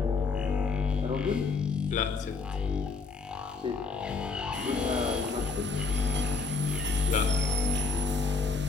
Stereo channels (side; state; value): right; quieter; 4.5 dB